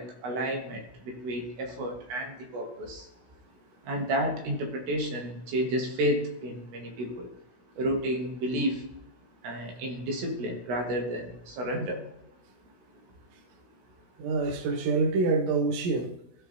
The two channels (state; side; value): late; left; 16 ms